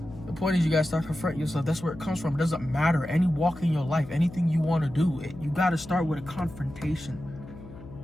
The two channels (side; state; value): left; noise; hum, 16 dB below the sound